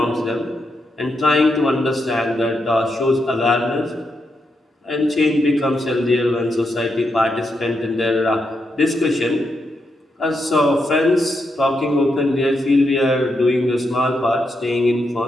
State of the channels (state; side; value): normal; both; correlation 0.83